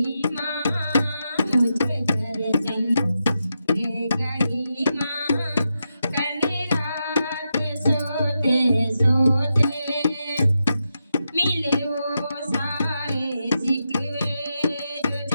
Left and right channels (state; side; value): inverted; both; correlation -0.87